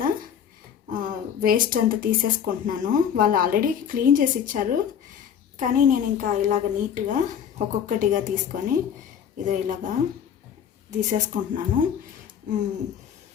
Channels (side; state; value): right; quieter; 8.5 dB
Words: వేస్ట్ అంతా తీసేసుకుంటున్నాను. వాళ్ళు ఆల్రెడీ క్లీన్ చేసి ఇచ్చారు, కానీ నేను ఇంకా ఇలాగ నీట్గా ఒక్కొక్కటిగా తీసుకొని ఇదో ఇలాగా తీసేసుకుంటున్నాను.